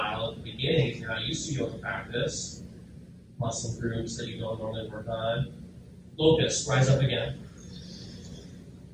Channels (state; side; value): identical; both; correlation 1.00